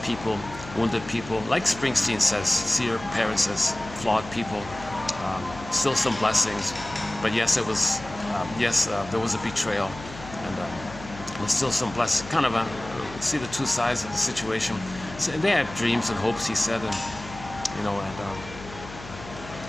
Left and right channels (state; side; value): noise; left; hum, 15 dB below the sound